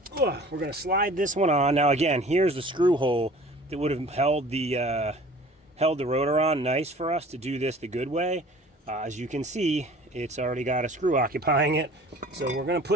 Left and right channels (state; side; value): normal; both; correlation 0.47